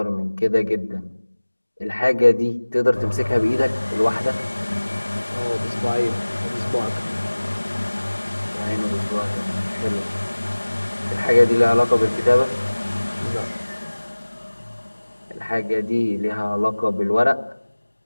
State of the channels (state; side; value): inverted; both; correlation -1.00